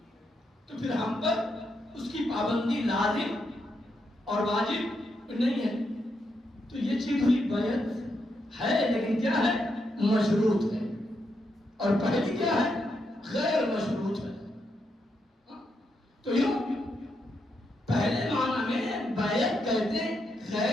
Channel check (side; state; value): both; normal; correlation 0.81